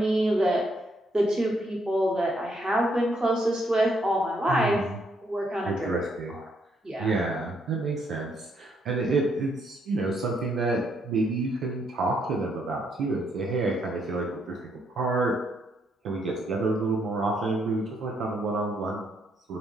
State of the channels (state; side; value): normal; both; correlation 0.73